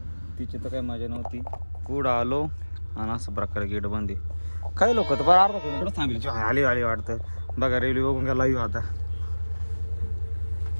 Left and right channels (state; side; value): inverted; both; correlation -1.00